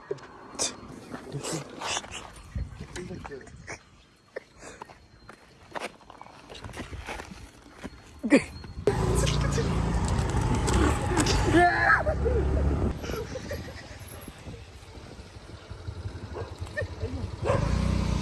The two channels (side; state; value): both; identical; correlation 1.00